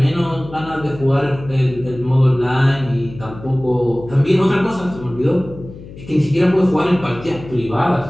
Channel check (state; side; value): noise; left; hum, 16 dB below the sound